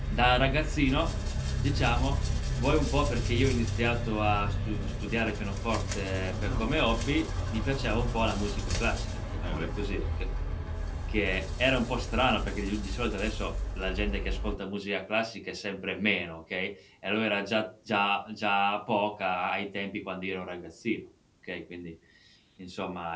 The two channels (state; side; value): identical; both; correlation 1.00